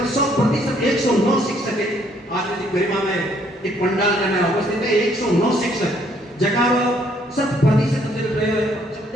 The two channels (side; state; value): both; normal; correlation 0.66